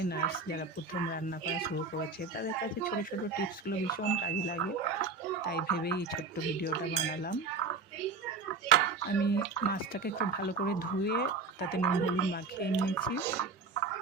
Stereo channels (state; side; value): quieter; left; 4.2 dB